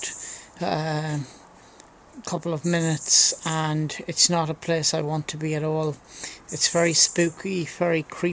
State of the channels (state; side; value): identical; both; correlation 1.00